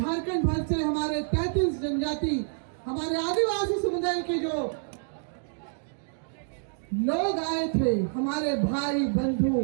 भर से हमारे 33 जनजाति, हमारे आदिवासी समुदाय के जो लोग आए थे, हमारे भाई बंधु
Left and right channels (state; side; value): silent; left; digital silence